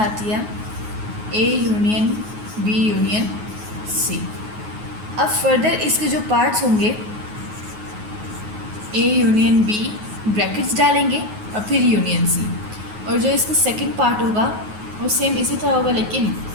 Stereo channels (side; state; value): left; late; 9.4 ms